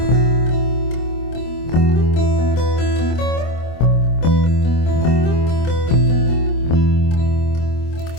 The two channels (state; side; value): late; right; 25 ms